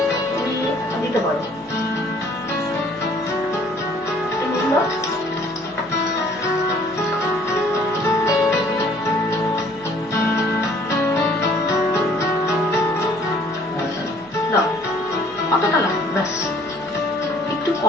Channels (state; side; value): noise; left; hum, 29 dB below the sound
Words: তুমি দিতে পারো। নুন দাও। দাও, অতটা লাগবে, ব্যাস। একটু